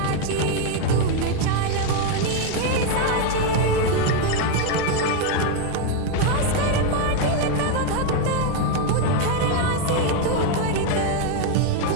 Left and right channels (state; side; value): different; both; correlation 0.02